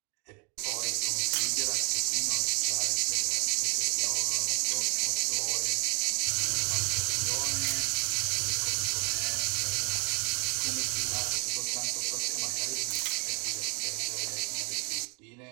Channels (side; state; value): left; quieter; 32.9 dB